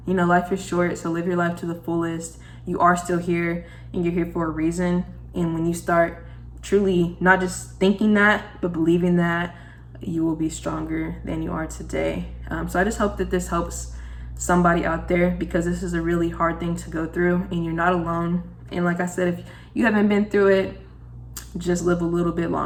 You know, life is short, so live your life to the fullest. You are still here, and you're here for a reason. And when you start truly not just thinking that, but believing that, you will be stronger than you are today. So I just hope that this helps somebody out there, because this is a really hard thing to go through, and you're not alone. And like I said, if you haven't been through it, just live a little bit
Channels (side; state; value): both; identical; correlation 1.00